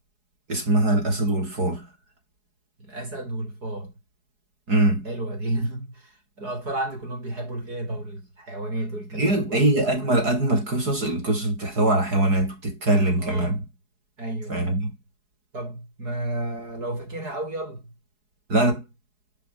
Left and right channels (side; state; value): left; late; 4.8 ms